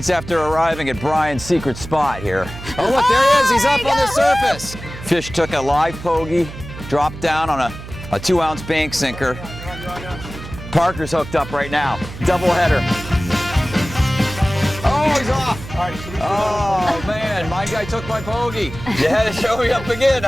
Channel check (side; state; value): right; noise; hum, 12 dB below the sound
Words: after arriving at Brian's secret spot here. Oh look, there he is, he's up on the surface. Fish took a live pogie, dropped down on a 2-ounce bank sinker. Parker's hooked up right now. Double header. Oh, he's off. Oh man, my guy took my pogie. You had to show me up again,